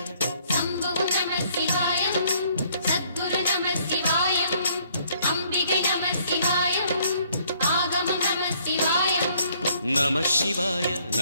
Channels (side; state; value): both; inverted; correlation -0.64